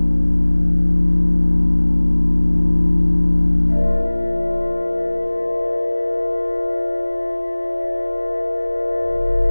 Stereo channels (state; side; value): inverted; both; correlation -1.00